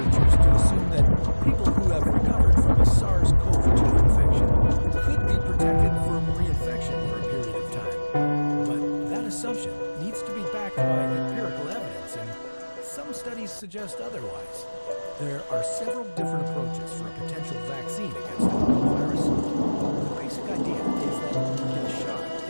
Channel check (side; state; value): both; inverted; correlation -1.00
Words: to assume that people who have recovered from a SARS-CoV-2 infection could be protected from reinfection for a period of time. But that assumption needs to be backed by empirical evidence, and some studies suggest otherwise. There are several different approaches for a potential vaccine against the coronavirus. The basic idea is that you get a shot